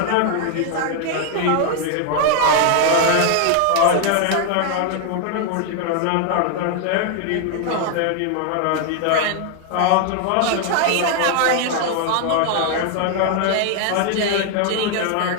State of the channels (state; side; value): different; both; correlation 0.00